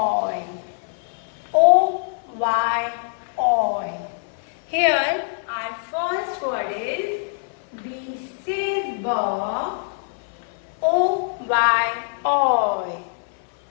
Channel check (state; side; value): silent; right; 56 dB below the other